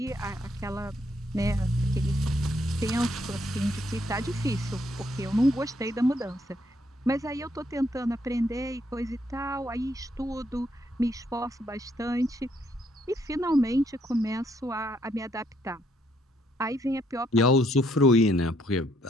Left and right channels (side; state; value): both; normal; correlation 0.71